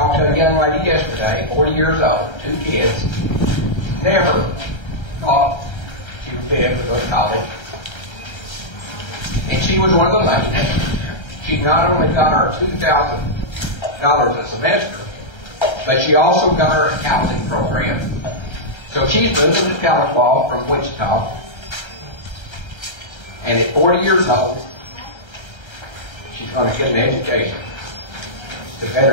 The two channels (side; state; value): right; late; 1.3 ms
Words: to a young lady yesterday, 40 years old, 2 kids, never thought she would be able to go to college. And she was one of the ladies. She not only got her $2,000 a semester, but she also got her a housing program. So she's moving to Tahlequah from Wichita. And at 40 years old, she's going to get an education to